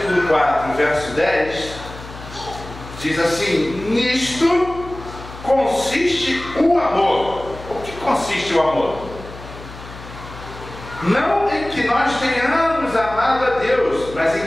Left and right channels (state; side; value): noise; left; hum, 15 dB below the sound